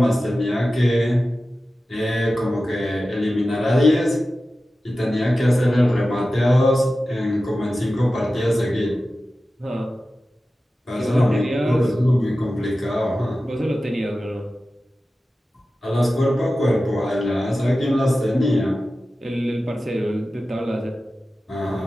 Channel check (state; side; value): normal; both; correlation 0.94